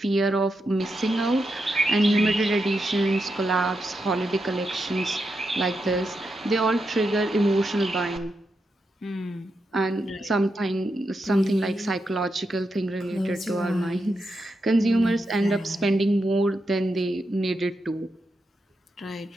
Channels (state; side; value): normal; both; correlation 0.85